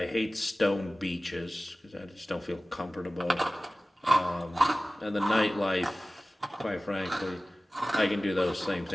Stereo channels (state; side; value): normal; both; correlation 0.97